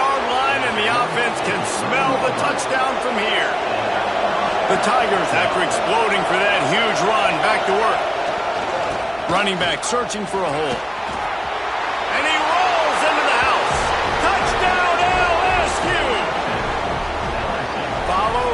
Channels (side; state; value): both; identical; correlation 1.00